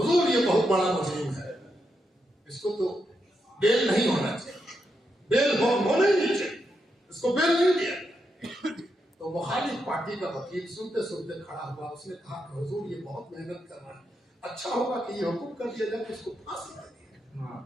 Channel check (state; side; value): normal; both; correlation 0.83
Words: یہ بہت بڑا مجرم ہے، اس کو تو بیل نہیں ہونا چاہیے، بیل ہونا ہی نہیں چاہیے، اس کو بیل نہیں دیا. تو تو مخالف پارٹی کا وکیل سنتے سنتے کھڑا ہوا، اس نے کہا کہ حضور یہ بہت محنت کر رہا ہے، اچھا ہوگا کہ یہ حکم کر دیا جائے کہ اس کو پھانسی دے دیا،